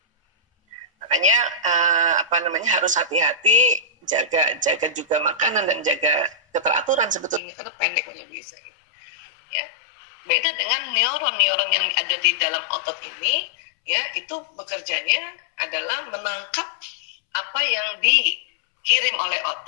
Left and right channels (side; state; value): right; drops out; at 7.4 s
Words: Makanya harus hati-hati, jaga juga makanan dan jaga keteraturan sebetulnya karena pendek punya Bu Isa ini. Ya. Beda dengan neuron yang ada di dalam otot ini, ya, itu bekerjanya adalah menangkap apa yang dikirim oleh